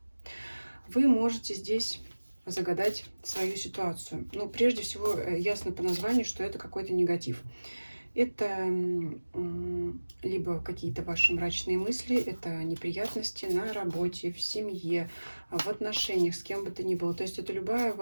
Вы можете здесь загадать свою ситуацию. Ну, прежде всего, ясно по названию, что это какой-то негатив. Это либо какие-то ваши мрачные мысли, это неприятности на работе, в семье, в отношениях, с кем бы то ни было. То есть это любая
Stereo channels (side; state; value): both; inverted; correlation -1.00